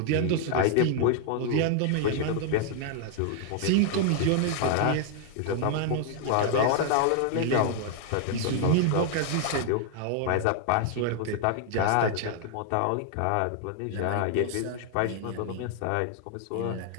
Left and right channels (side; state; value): both; different; correlation 0.00